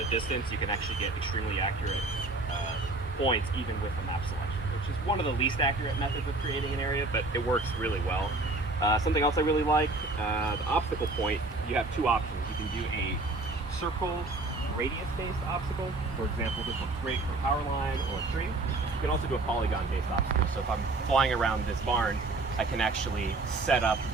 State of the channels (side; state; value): left; quieter; 3.2 dB